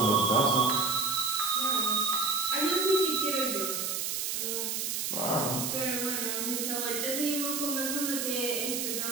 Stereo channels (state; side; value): noise; right; hiss, 1 dB below the sound